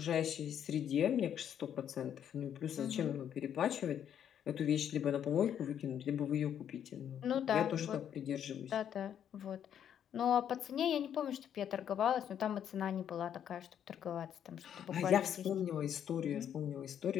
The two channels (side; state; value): right; quieter; 9.3 dB